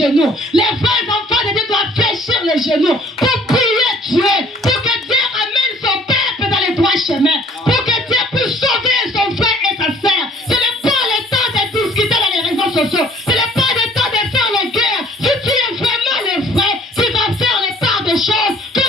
Les vrais enfants de Dieu doivent fléchir les genoux pour prier Dieu, pour que Dieu ramène son peuple dans les droits chemins, pour que Dieu puisse sauver son frère et sa sœur. Ce n'est pas le temps de discuter dans les réseaux sociaux. Ce n'est pas le temps de faire la guerre. Si tu es vraiment le vrai, tu vas faire les parts des choses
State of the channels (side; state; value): both; normal; correlation 0.54